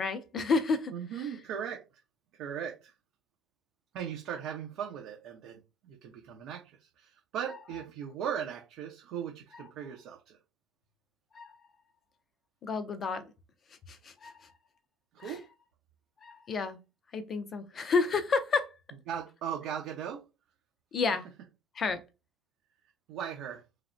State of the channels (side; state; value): both; normal; correlation 0.59